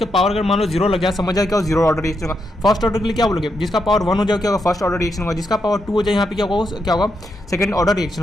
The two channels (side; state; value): both; normal; correlation 0.82